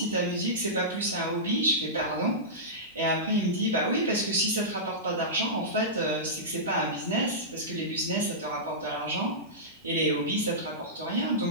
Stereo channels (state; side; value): normal; both; correlation -0.16